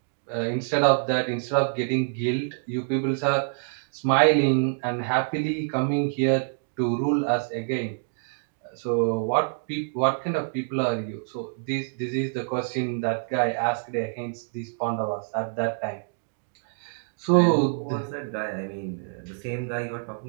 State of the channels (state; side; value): silent; left; digital silence